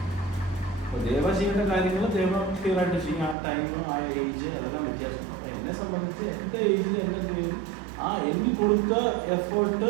അപ്പോൾ ദേവ ചെയ്യേണ്ട കാര്യങ്ങൾ ദേവ ക്ലിയർ ആയിട്ട് ചെയ്യും. ആ ടൈം, ആ ഏജ്, അതെല്ലാം വ്യത്യാസമാണ്. അപ്പോൾ എന്നെ സംബന്ധിച്ച് എൻ്റെ ഏജിൽ എൻ്റെ ആ എന്നിൽ കൊടുത്ത എഫേർട്ട്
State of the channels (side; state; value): left; drops out; at 3.4 s